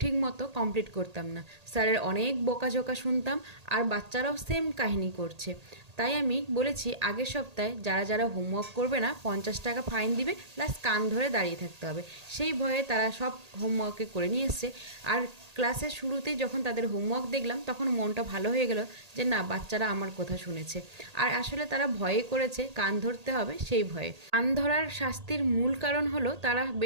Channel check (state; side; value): late; left; 1.8 ms